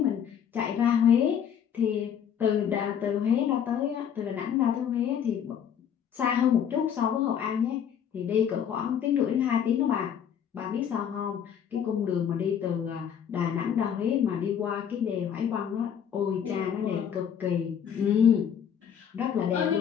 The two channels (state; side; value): quieter; right; 8.5 dB